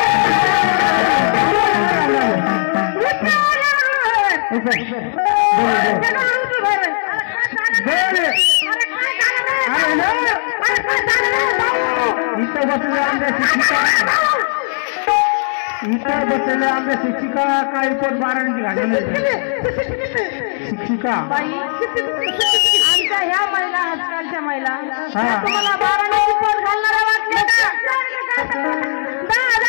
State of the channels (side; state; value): right; silent; 68 dB below the other